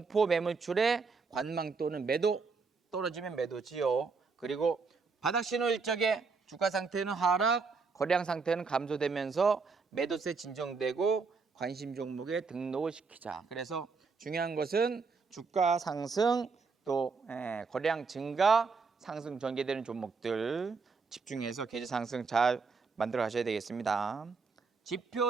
매물출에 관망 또는 매도 떨어지면 매도지요. 그리고 바닥 신호 일적에 주가 상태는 하락, 거래량 상태는 감소되면서 매도세 진정되고 관심 종목에 등록을 시키자. 그래서 중요한 것은 주가 상승 또 거래량 증가, 상승 전개되는 종목들 집중해서 계좌 상승 잘 만들어 가셔야 되겠습니다.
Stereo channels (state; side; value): quieter; left; 4.7 dB